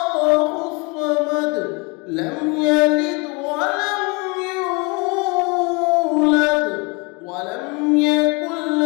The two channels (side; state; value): right; quieter; 29.5 dB